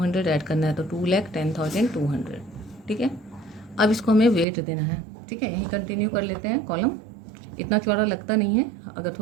ऐड करना है तो 2,10,200। ठीक है, अब इसको हमें वेट देना है। ठीक है, यहीं कंटिन्यू कर लेते हैं, कॉलम इतना चौड़ा लगता नहीं है, अगर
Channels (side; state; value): left; drops out; at 4.5 s